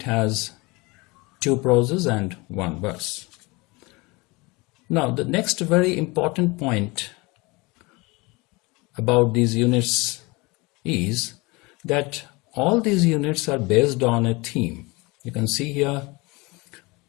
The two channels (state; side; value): quieter; right; 25.1 dB